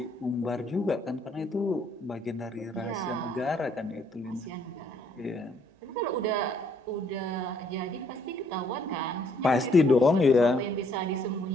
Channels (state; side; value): normal; both; correlation 0.66